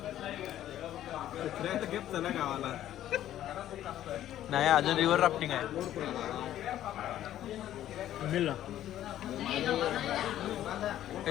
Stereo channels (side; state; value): right; quieter; 12.3 dB